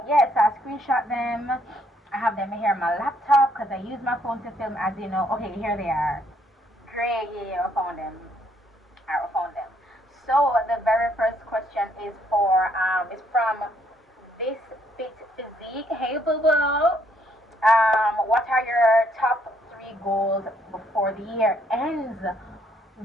yes, I screenshot them. I have them here on my laptop because I use my phone to film, as you know. Okay, here they are. Great, yeah, I found them. I found them. So the very first question is from This Fit Physique. Hey, boo boo. What are your top 3 goals before the year ends?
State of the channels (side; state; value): both; normal; correlation 0.69